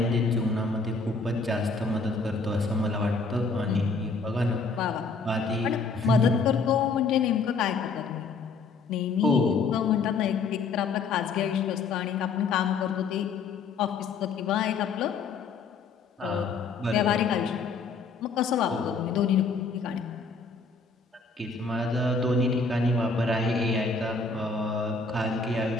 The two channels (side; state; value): right; quieter; 4.4 dB